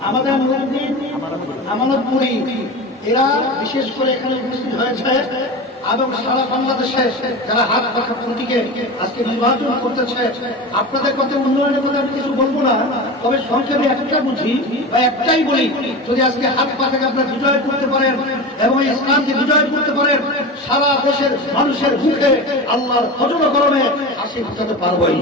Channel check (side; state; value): both; normal; correlation 0.28